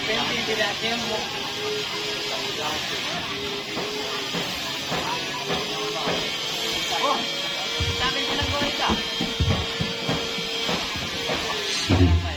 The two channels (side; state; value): both; identical; correlation 1.00